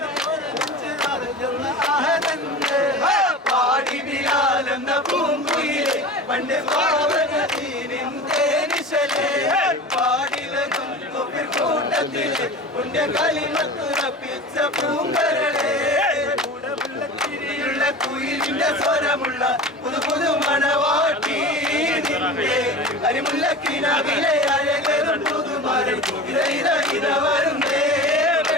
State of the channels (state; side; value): normal; both; correlation 0.33